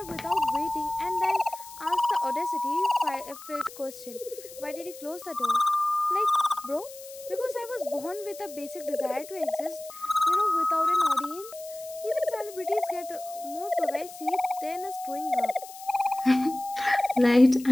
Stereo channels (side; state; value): left; noise; hiss, 16 dB below the sound